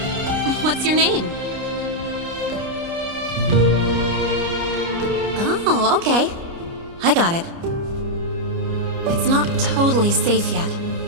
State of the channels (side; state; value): left; late; 29 ms